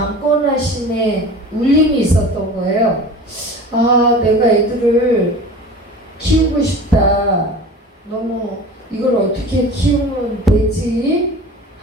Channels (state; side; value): normal; both; correlation 0.38